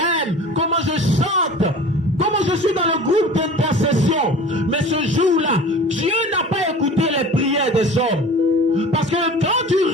comment je chante, comment je suis dans le groupe d'intercession. Mais ce jour-là, Dieu n'a pas écouté les prières des hommes. Parce que quand tu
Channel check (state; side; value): normal; both; correlation 0.40